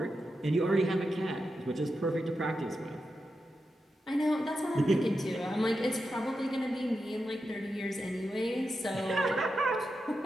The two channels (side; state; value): both; normal; correlation 0.88